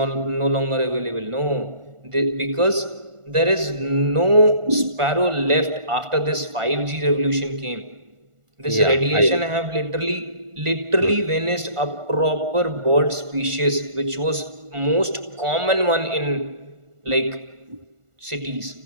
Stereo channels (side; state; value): left; late; 1.4 ms